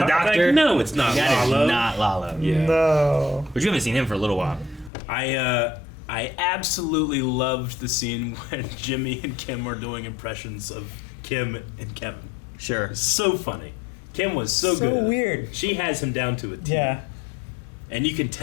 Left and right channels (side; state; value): right; drops out; at 4.9 s